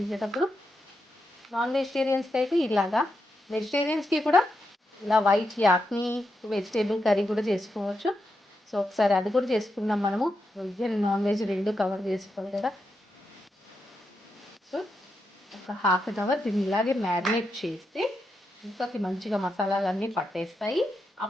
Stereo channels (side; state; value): both; normal; correlation 0.85